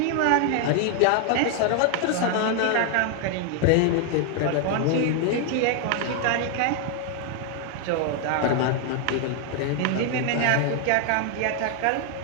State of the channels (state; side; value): different; both; correlation 0.00